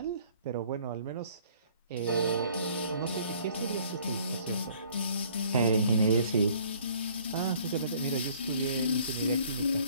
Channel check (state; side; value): inverted; both; correlation -0.57